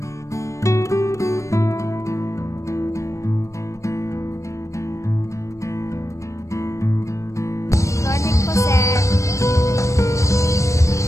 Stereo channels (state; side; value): late; right; 0.15 ms